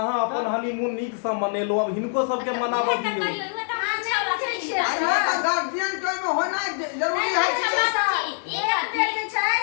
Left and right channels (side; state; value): right; silent; digital silence